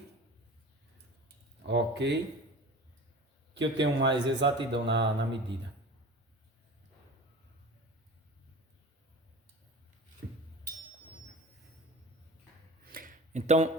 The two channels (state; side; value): normal; both; correlation 0.36